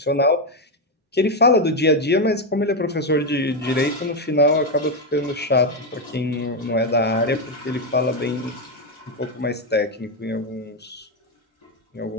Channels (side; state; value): both; normal; correlation 0.06